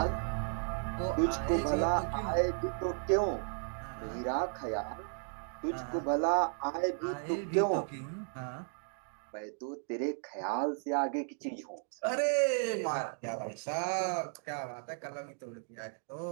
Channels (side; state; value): left; silent; 55 dB below the other